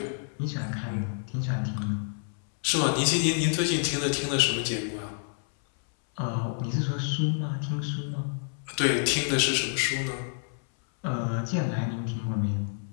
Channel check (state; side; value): silent; right; 59 dB below the other